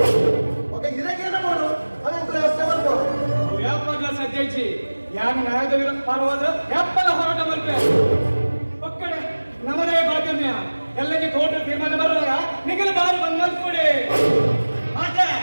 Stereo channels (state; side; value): inverted; both; correlation -1.00